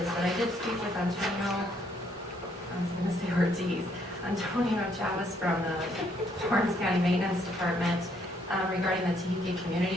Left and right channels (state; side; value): normal; both; correlation 0.69